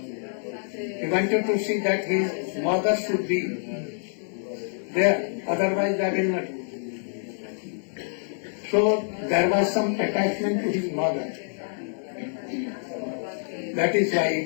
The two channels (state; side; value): silent; right; digital silence